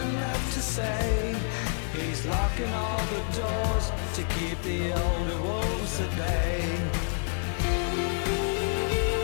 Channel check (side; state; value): right; silent; 59 dB below the other